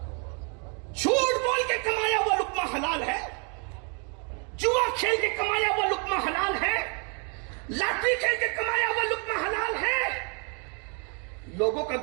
جھوٹ بول کے کمایا ہوا لقمہ حلال ہے، جوا کھیل کے کمایا ہوا لقمہ حلال ہے، لاٹری کھیل کے کمایا ہوا لقمہ حلال ہے۔ لوگوں کا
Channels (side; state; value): left; quieter; 37.2 dB